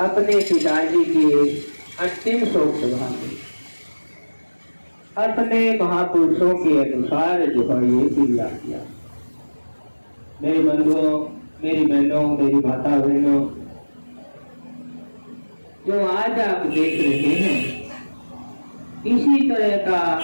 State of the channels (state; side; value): inverted; both; correlation -1.00